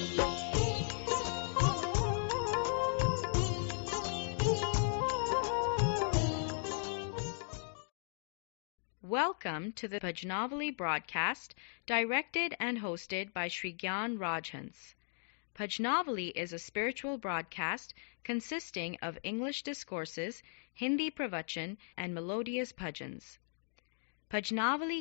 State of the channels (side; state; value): right; silent; digital silence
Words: Welcome to the Bhajnavali broadcast, directed and hosted by Sri Gyan Rajhans. Bhajnavali is a spiritual broadcast consisting of English discourses, Hindi pravachan, and melodious bhajans. भजनावली